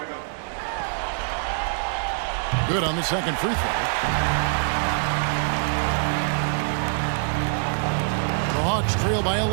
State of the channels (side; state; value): left; silent; digital silence